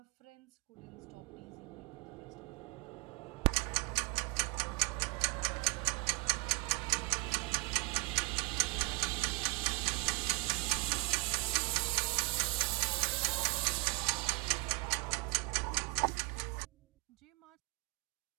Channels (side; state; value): left; quieter; 27.8 dB